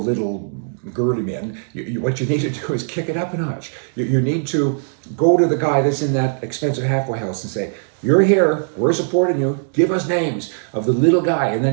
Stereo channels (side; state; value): left; silent; digital silence